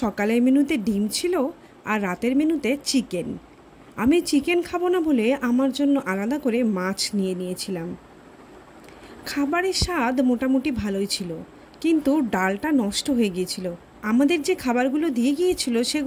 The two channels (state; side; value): identical; both; correlation 1.00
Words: সকালের মেনুতে ডিম ছিল আর রাতের মেনুতে চিকেন। আমি চিকেন খাবো না বলে আমার জন্য আলাদা করে মাছ নিয়ে নিয়েছিলাম। খাবারের স্বাদ মোটামুটি ভালোই ছিল, কিন্তু ডালটা নষ্ট হয়ে গিয়েছিল। আমাদের যে খাবারগুলো দিয়ে গিয়েছিল